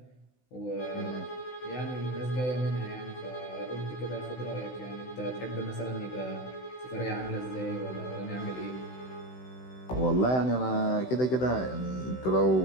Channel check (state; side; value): late; right; 16 ms